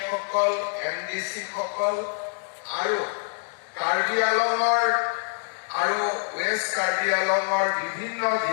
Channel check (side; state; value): right; silent; digital silence